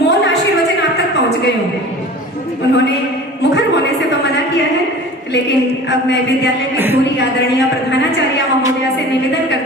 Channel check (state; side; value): normal; both; correlation 0.40